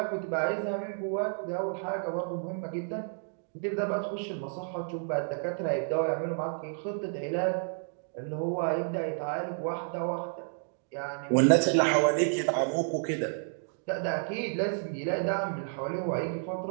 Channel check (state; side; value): silent; left; digital silence